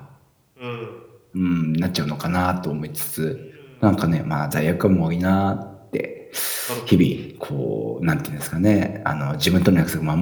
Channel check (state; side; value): identical; both; correlation 1.00